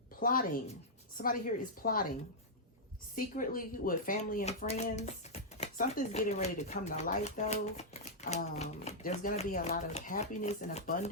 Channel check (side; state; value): both; normal; correlation -0.08